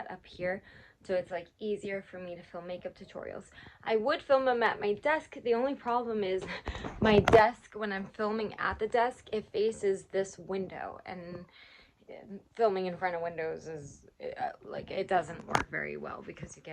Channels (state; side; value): identical; both; correlation 1.00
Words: up here so it's like easier for me to film makeup tutorials. I would film them at my desk. The only problem is my desk, when I'm filming at the desk, it faces this window, and filming in front of windows is like, it doesn't work very well because you